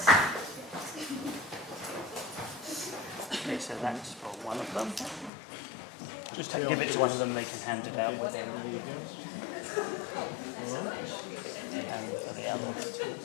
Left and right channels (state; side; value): drops out; right; at 5.3 s